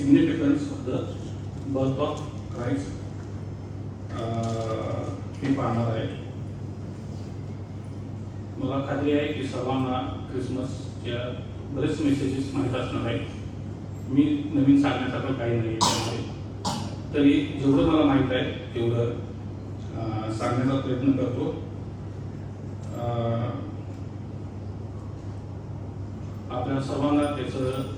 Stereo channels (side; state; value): both; identical; correlation 1.00